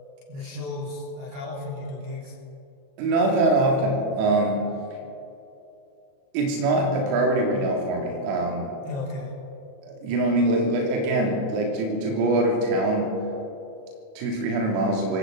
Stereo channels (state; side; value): late; left; 37 ms